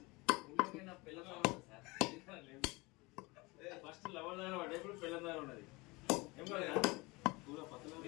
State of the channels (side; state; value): right; quieter; 24.3 dB